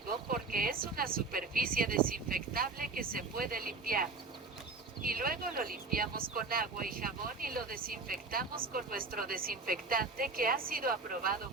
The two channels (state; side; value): quieter; left; 3.9 dB